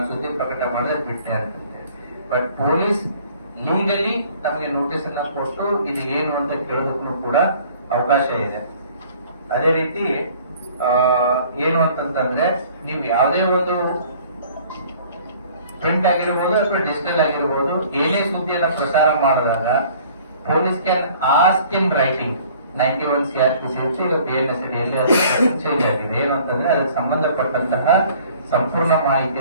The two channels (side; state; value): both; inverted; correlation -0.53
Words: ಸುದ್ದಿ ಪ್ರಕಟ ಮಾಡಿದ್ರೆ ಬಿಟ್ಟೆ ಅಂತ. ಬಟ್ ಪೊಲೀಸ್ ಲೀಗಲಿ ನಮಗೆ ನೋಟಿಸ್ ಅನ್ನ ಕೊಟ್ಟು ಇದು ಏನು ಅಂತ ಕೇಳೋದಕ್ಕೂ ಕೂಡ ಅವಕಾಶ ಇದೆ. ಅದೇ ರೀತಿ ಏನು ಅಂತಂದ್ರೆ ನೀವು ಯಾವುದೇ ಒಂದು ಪ್ರಿಂಟ್ ಆಗಿರ್ಬೋದು ಅಥವಾ ಡಿಜಿಟಲ್ ಆಗಿರ್ಬೋದು ಏನೇ ಸುದ್ದಿಯನ್ನ ಪ್ರಸಾರ ಮಾಡಿದಾಗ police can ask in writing. 91 CRPC ಈಗ PNS ಅಡಿಯಲ್ಲಿ ಅದು ಚೇಂಜ್ ಆಗಿದೆ. ಏನು ಅಂತಂದ್ರೆ ಅದಕ್ಕೆ ಸಂಬಂಧಪಟ್ಟಂತಹ ಸಂಪೂರ್ಣ